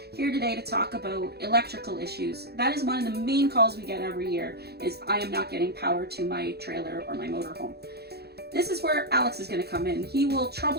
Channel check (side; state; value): left; late; 0.47 ms